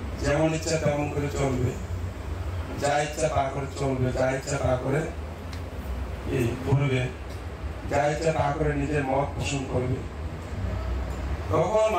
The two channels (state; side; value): identical; both; correlation 1.00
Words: যেমন ইচ্ছা তেমন করে চলবে, যা ইচ্ছা তা করে চলবে, যা ইচ্ছা তা করে এই করবে, যা ইচ্ছা তা করে নিজের মত পোষণ করবে, তখন